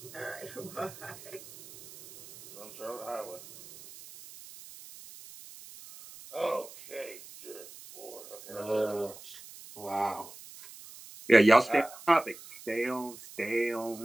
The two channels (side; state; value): right; noise; hiss, 17 dB below the sound